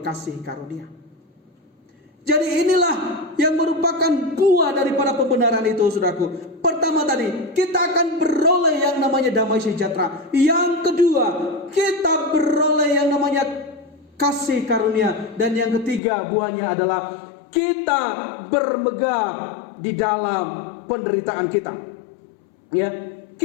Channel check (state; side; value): drops out; right; at 16.0 s